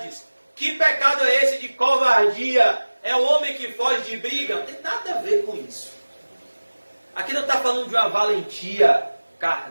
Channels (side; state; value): both; inverted; correlation -1.00